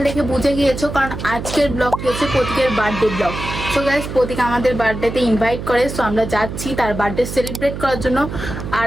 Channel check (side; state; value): right; noise; hum, 7 dB below the sound